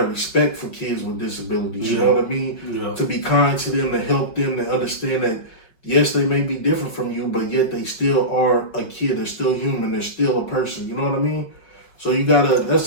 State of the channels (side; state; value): right; late; 5.4 ms